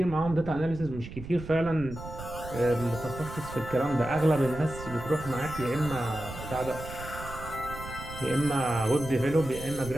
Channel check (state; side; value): noise; right; rumble, 12 dB below the sound